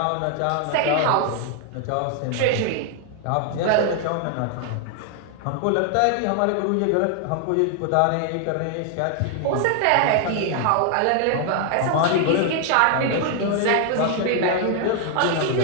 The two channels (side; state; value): both; different; correlation 0.00